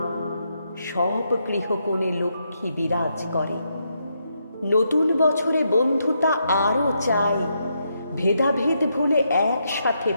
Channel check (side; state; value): both; inverted; correlation -0.80